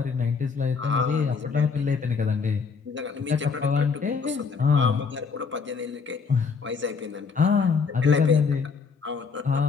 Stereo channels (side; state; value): right; quieter; 5.3 dB